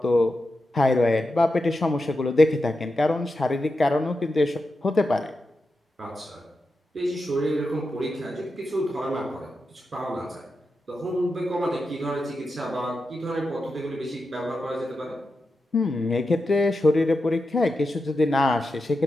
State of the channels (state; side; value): normal; both; correlation 0.89